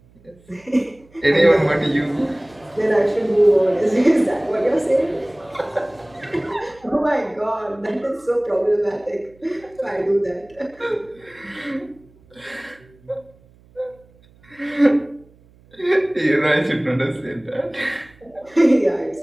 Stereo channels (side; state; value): right; noise; hum, 29 dB below the sound